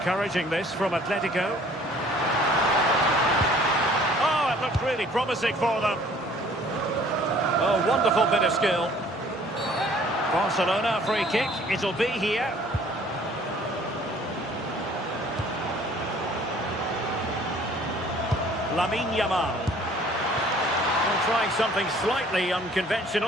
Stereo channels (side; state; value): both; normal; correlation 0.55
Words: this from Atletico. Oh, it looked really promising for them. Oh, wonderful bit of skill. Barcelona free kick. It'll be here. Lamine Yamal. Well, trying something slightly